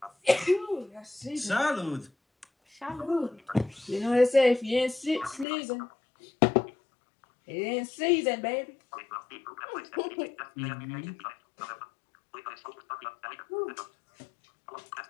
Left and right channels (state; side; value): drops out; right; at 5.5 s